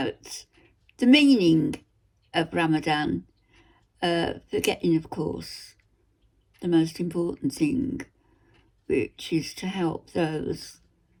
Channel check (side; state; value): both; identical; correlation 1.00